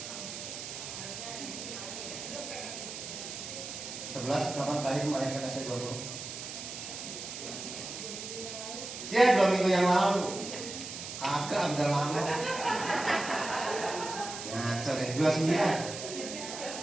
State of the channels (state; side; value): noise; right; hiss, 8 dB below the sound